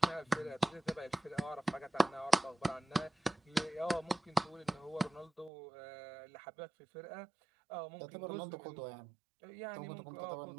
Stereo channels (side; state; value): left; drops out; at 5.5 s